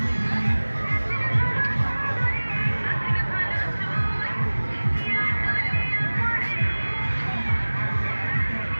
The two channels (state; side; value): inverted; both; correlation -1.00